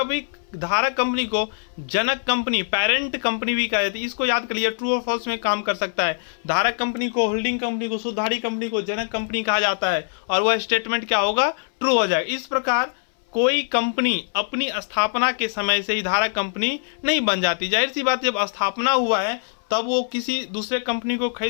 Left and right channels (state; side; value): silent; right; 62 dB below the other